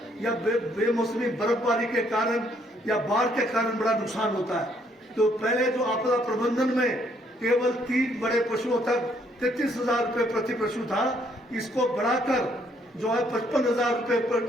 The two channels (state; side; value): normal; both; correlation 0.68